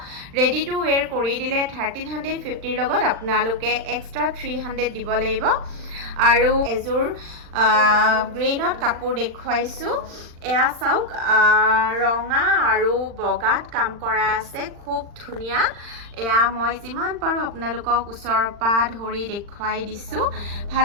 ৰেডি টু ওৱেৰ কৰি দিলে 1350 লগত আপোনালোকে এক্সট্ৰা 300 দিব লাগিব আৰু এজোৰ গ্ৰীণত কাপোৰ দেখুৱাইছো এয়া চাওক ৰঙা আৰু বগাত কাম কৰা আছে খুব ধুনীয়া এয়া মই যিমান পাৰো আপোনালোকক ওচৰৰ পৰা ধৰি দেখুৱাই দিছো ভাল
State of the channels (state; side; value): late; left; 40 ms